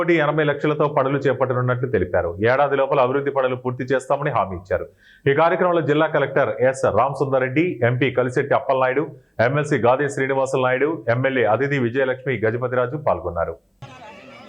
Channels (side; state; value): both; identical; correlation 1.00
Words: పనులు చేపట్టనున్నట్లు తెలిపారు. ఏడాది లోపల అభివృద్ధి పనులు పూర్తి చేస్తామని హామీ ఇచ్చారు. ఈ కార్యక్రమంలో జిల్లా collector S Ramasundar Reddy, MP Kalisetti Appalanaidu, MLC Gade Srinivasulu Naidu, MLA Aditi Vijayalakshmi Gajapathiraju పాల్గొన్నారు.